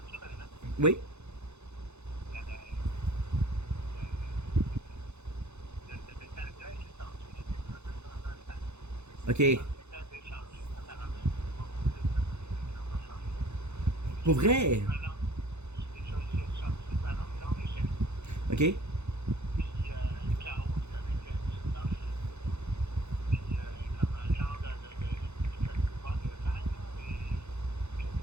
Oui. Ok. Pour vrai? Ok.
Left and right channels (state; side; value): late; left; 0.81 ms